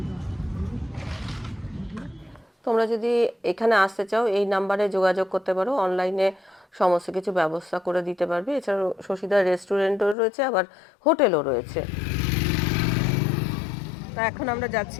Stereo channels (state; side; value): drops out; right; at 10.2 s